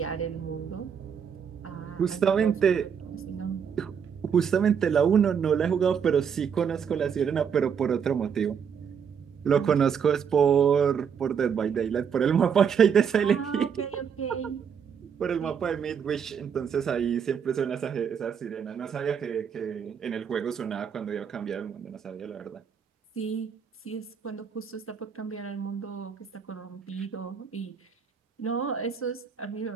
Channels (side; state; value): left; quieter; 7.2 dB